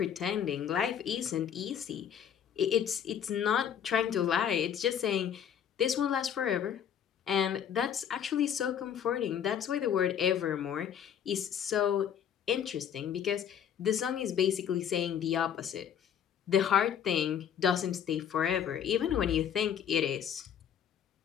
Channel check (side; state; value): right; quieter; 8.8 dB